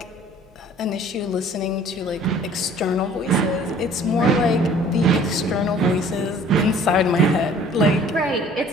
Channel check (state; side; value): normal; both; correlation 0.52